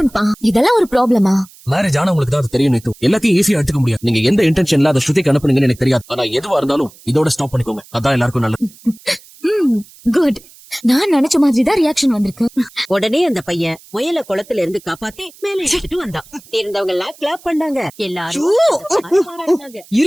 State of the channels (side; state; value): right; noise; hiss, 24 dB below the sound